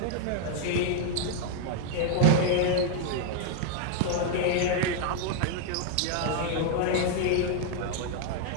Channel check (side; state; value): both; different; correlation 0.00